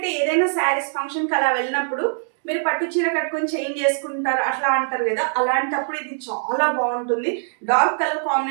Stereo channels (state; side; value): silent; left; digital silence